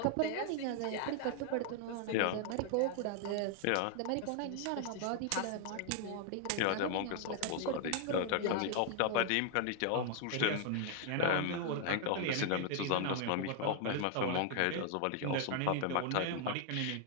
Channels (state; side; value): different; both; correlation 0.00